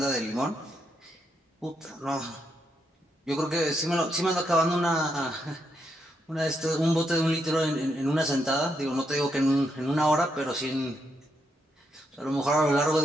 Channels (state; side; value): normal; both; correlation 0.80